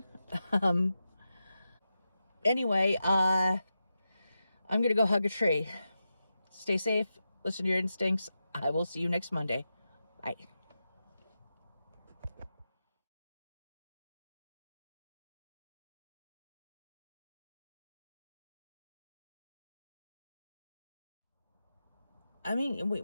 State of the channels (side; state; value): both; inverted; correlation -0.90